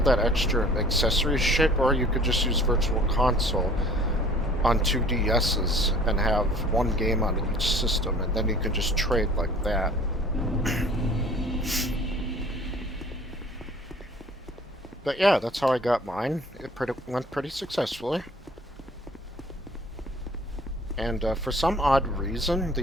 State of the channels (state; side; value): normal; both; correlation 0.50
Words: that extra accessory shit, or you could just use Virtual Console on 2DSs and have one game on each system, and then you can just trade like that. But yeah, that's how I got mine. It went pretty successfully. And for some odd reason,